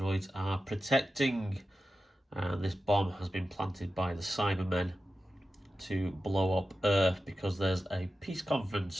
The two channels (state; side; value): normal; both; correlation 0.92